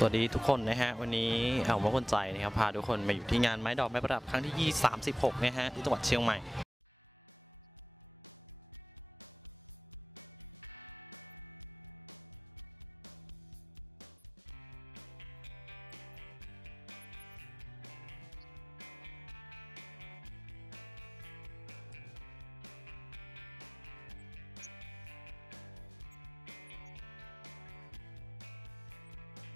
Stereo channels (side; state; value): both; normal; correlation 0.92